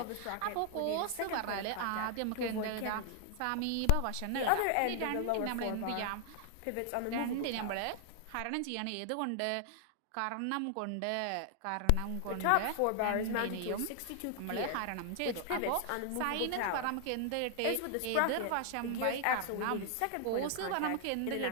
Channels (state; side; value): different; both; correlation 0.00